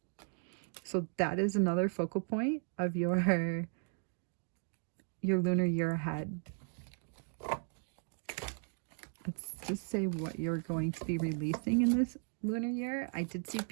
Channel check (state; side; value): silent; left; 54 dB below the other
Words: So that is another focal point of your lunar year ahead. Let's just say what you're going to be releasing in this lunar year. I did see